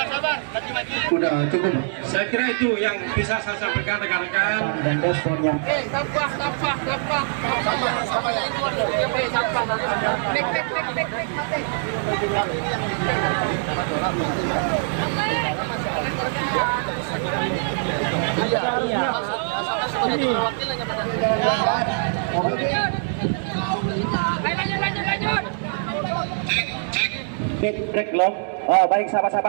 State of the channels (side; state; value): left; silent; 63 dB below the other